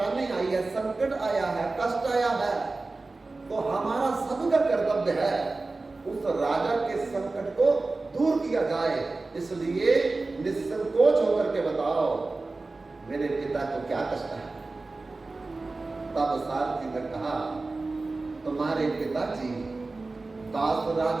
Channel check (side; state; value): left; quieter; 3.5 dB